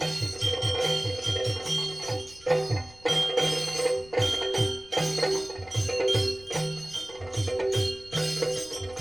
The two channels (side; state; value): left; noise; rumble, 24 dB below the sound